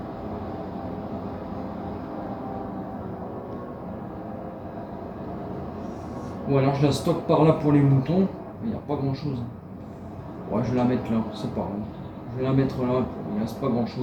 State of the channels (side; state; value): both; identical; correlation 1.00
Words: Ou alors je la stocke par là pour les moutons. Il n'y a pas grand chose. Ouais, je vais la mettre là, c'est pas grave. Je vais la mettre là, il ne reste pas grand